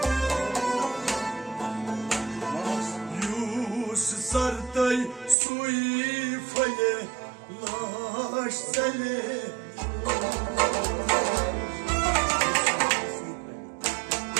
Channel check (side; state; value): left; drops out; at 5.4 s